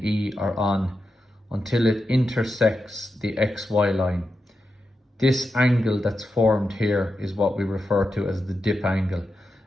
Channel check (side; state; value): both; normal; correlation 0.88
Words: E are on, until it intersects the XY line, this angle that's formed here is what we refer to as the dip angle.